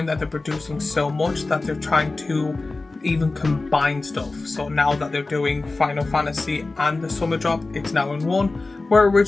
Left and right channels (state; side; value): quieter; right; 3.4 dB